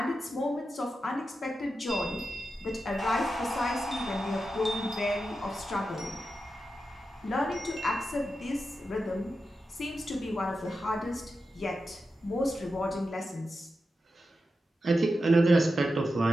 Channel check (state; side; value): normal; both; correlation 0.90